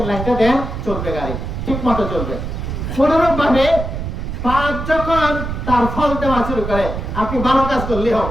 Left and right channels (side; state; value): right; noise; rumble, 5 dB below the sound